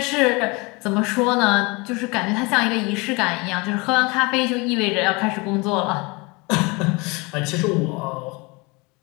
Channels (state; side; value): quieter; right; 26.8 dB